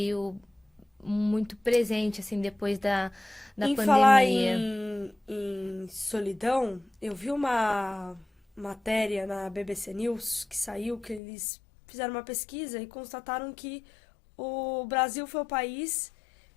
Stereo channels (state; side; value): drops out; right; at 11.2 s